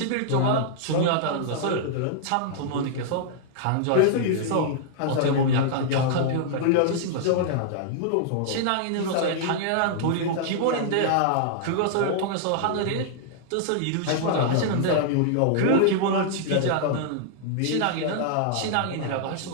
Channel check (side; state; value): both; different; correlation -0.01